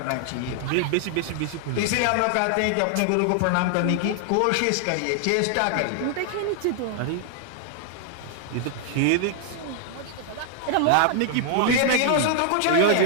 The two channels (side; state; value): both; different; correlation 0.00